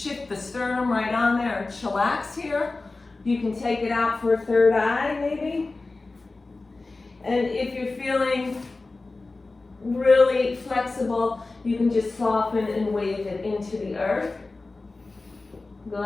the sternum right on there and chillax here. You can take it out for a third eye, maybe. And if you're feeling really flexible, you can just soften and wave it into the earth.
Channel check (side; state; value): right; quieter; 3.4 dB